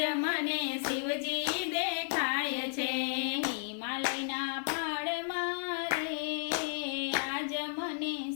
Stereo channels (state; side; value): silent; right; digital silence